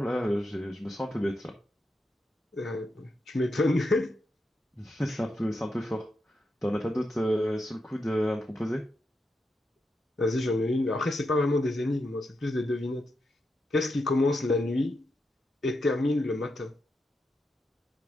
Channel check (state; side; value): normal; both; correlation 0.85